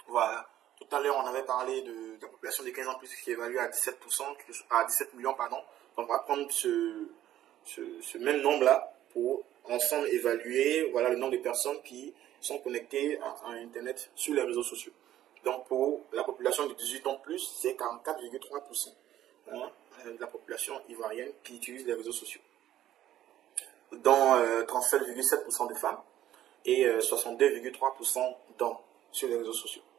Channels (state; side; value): quieter; left; 12.5 dB